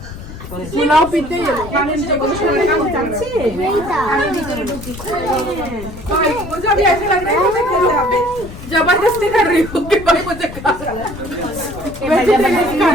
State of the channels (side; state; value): left; noise; rumble, 13 dB below the sound